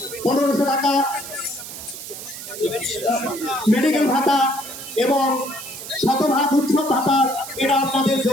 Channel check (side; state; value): right; noise; hiss, 11 dB below the sound